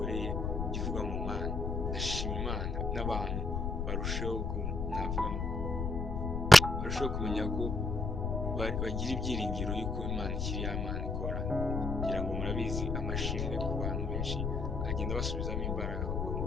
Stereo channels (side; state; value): left; noise; rumble, 1 dB below the sound